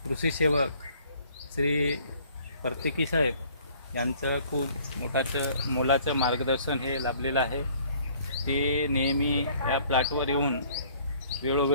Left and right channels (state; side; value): inverted; both; correlation -0.57